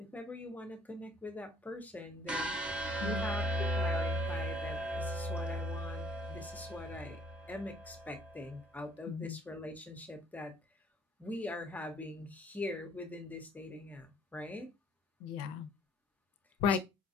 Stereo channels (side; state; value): both; normal; correlation 0.60